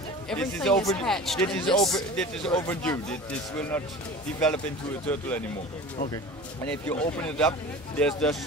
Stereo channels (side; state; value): both; normal; correlation 0.38